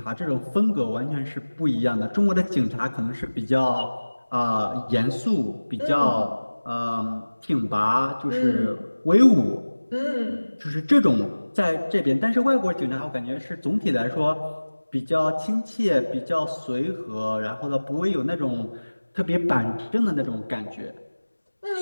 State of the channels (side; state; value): both; inverted; correlation -1.00